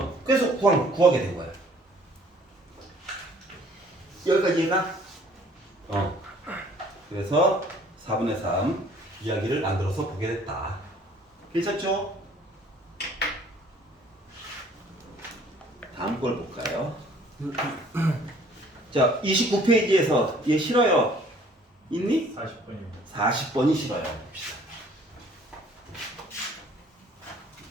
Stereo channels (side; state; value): both; normal; correlation 0.56